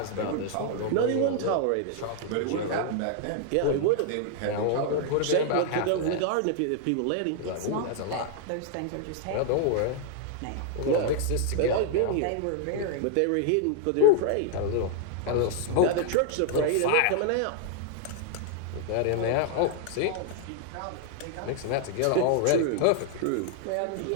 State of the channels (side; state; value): both; different; correlation 0.00